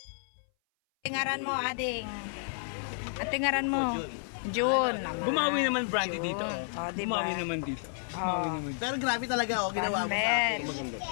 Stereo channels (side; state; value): right; silent; 57 dB below the other